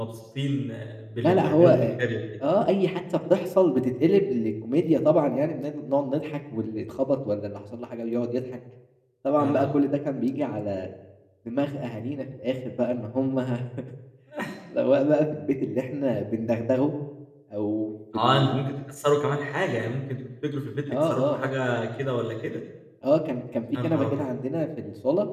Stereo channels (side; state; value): both; identical; correlation 1.00